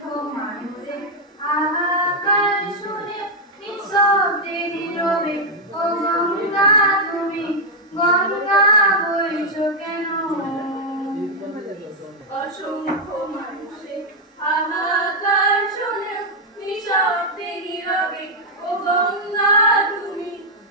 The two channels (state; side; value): normal; both; correlation -0.01